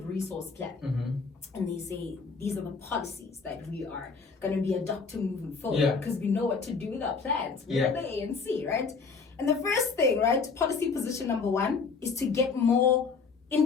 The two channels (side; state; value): right; quieter; 4.9 dB